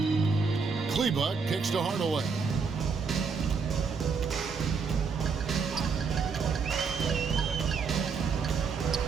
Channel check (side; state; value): left; quieter; 5.4 dB